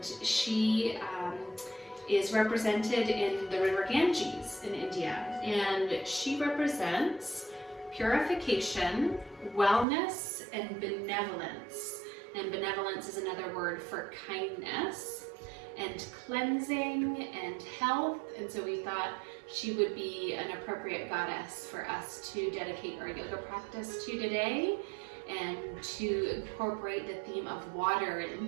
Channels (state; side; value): drops out; left; at 9.9 s